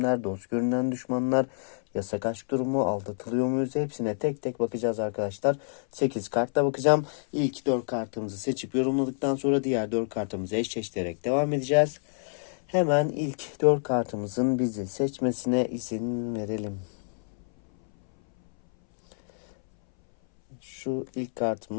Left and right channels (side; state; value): right; silent; 59 dB below the other